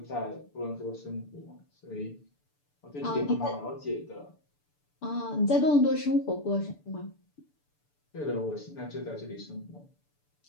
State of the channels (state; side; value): late; right; 6.9 ms